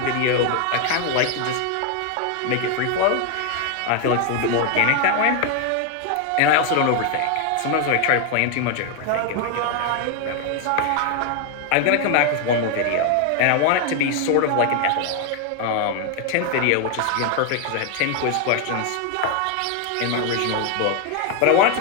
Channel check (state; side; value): different; both; correlation 0.00